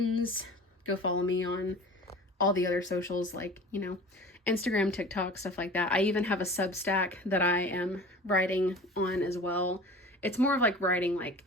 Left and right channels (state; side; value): normal; both; correlation 0.40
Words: Go follow me on all the other socials, like, you know, Instagram, TikTok, stuff like that. I even have a Substack that I am writing on as well. It's more of like writing like